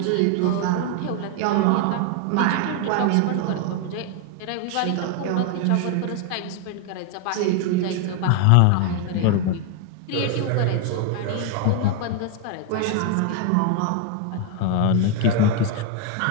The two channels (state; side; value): different; both; correlation 0.01